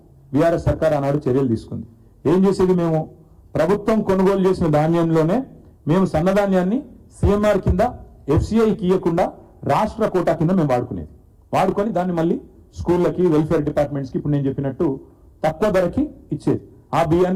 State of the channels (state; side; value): identical; both; correlation 1.00